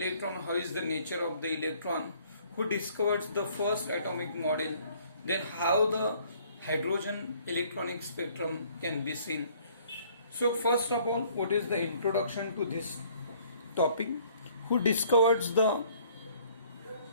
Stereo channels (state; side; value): inverted; both; correlation -0.59